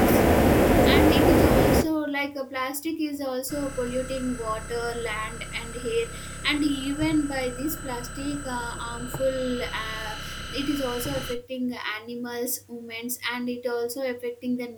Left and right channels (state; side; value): identical; both; correlation 1.00